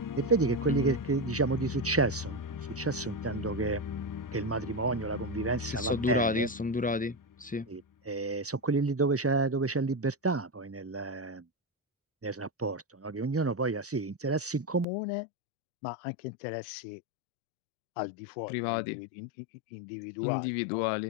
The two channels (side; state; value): right; drops out; at 14.9 s